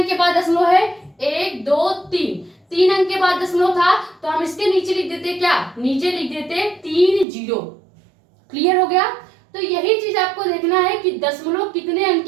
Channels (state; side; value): drops out; left; at 7.2 s